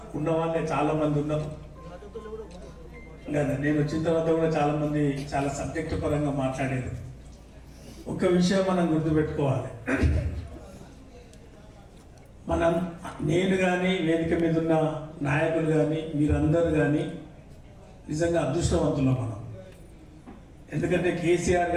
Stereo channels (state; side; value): identical; both; correlation 1.00